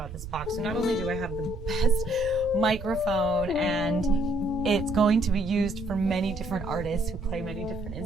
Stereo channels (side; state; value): right; noise; rumble, 12 dB below the sound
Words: this box. So not only do I have the best microphone, and it's going to be used for many different artists who play many different